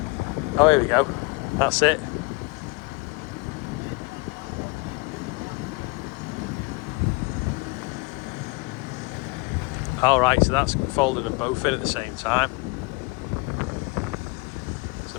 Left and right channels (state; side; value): quieter; right; 26.9 dB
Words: Oh, here we go. That's it. Alright, so that's folding them both in at the same time. So